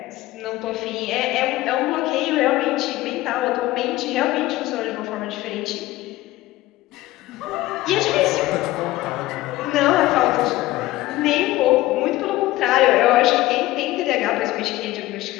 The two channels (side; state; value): right; quieter; 17.2 dB